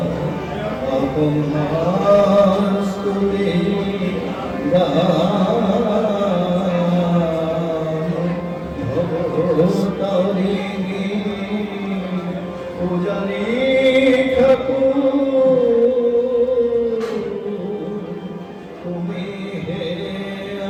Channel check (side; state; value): both; identical; correlation 1.00